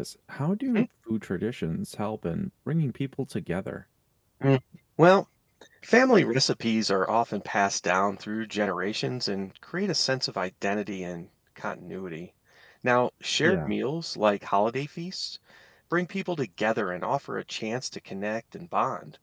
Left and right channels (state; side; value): identical; both; correlation 1.00